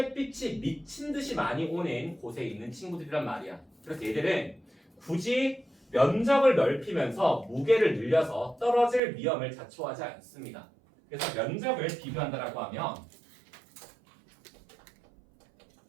미친 듯이 많이 오는 곳에 있는 친구들이란 말이야. 그래서 얘들은 굳이 면적을 넓히면서 무게를 늘려서 떨어질 위험을 자초하지 않습니다. 그래서 면적을 비교한다라고 하면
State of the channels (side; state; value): left; drops out; at 9.0 s